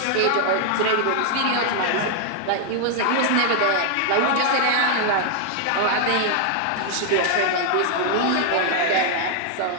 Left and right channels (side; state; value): both; different; correlation 0.00